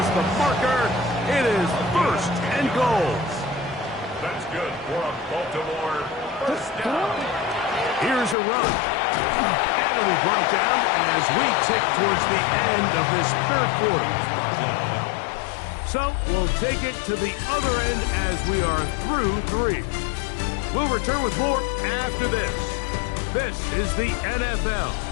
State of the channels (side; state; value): right; drops out; at 8.3 s